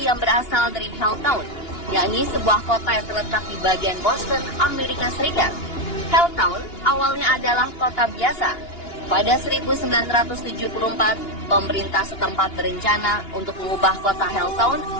yang berasal dari Helltown, yakni sebuah kota yang terletak di bagian Boston, Amerika Serikat. Helltown awalnya adalah kota biasa. Pada 1974, pemerintah setempat berencana untuk mengubah kota Helltown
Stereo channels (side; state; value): right; late; 2.8 ms